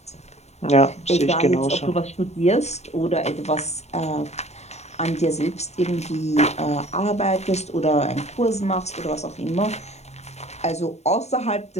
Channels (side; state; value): right; late; 0.32 ms